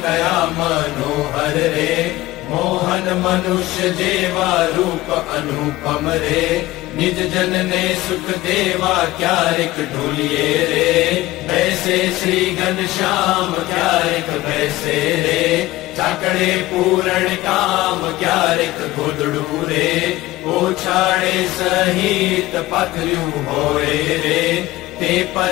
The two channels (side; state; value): right; quieter; 17.7 dB